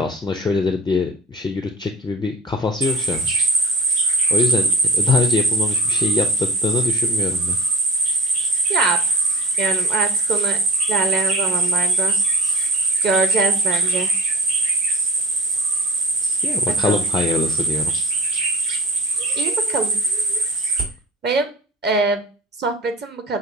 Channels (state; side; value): normal; both; correlation 0.35